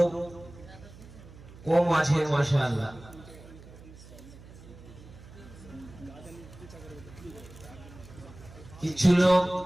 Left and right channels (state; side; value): noise; right; hum, 19 dB below the sound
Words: কম আছে মাশাআল্লাহ। কিছু লোক